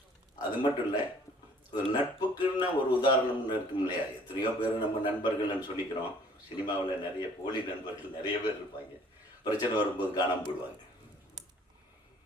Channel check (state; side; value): normal; both; correlation 0.56